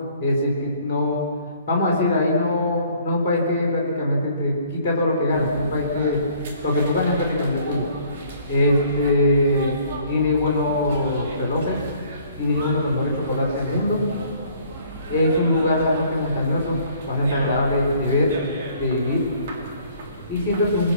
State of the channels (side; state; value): both; inverted; correlation -0.59